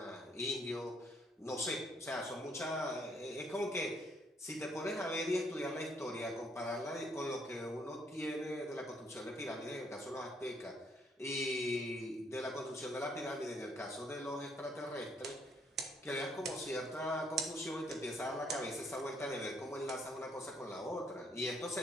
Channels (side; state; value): both; normal; correlation 0.69